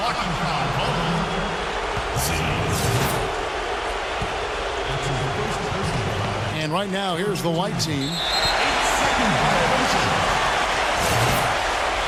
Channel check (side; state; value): both; identical; correlation 1.00